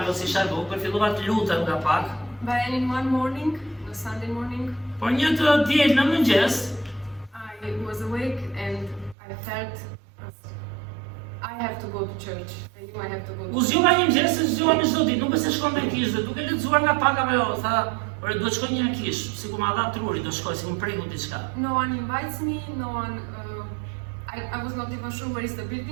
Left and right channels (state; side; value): drops out; left; at 9.2 s